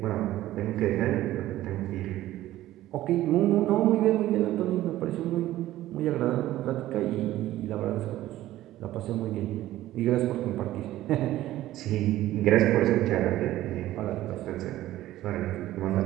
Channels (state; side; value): quieter; left; 14.8 dB